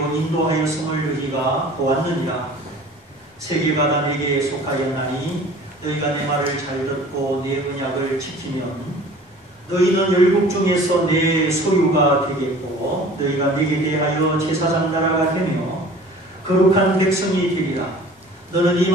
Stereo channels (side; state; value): both; normal; correlation 0.46